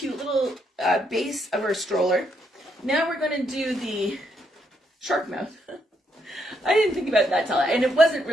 little base of our stroller. Now we're going to do the shark mouth. I didn't think about that and it wasn't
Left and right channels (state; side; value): normal; both; correlation 0.76